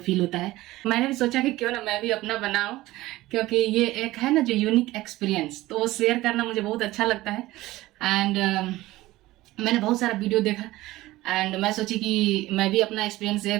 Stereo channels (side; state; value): left; quieter; 17.6 dB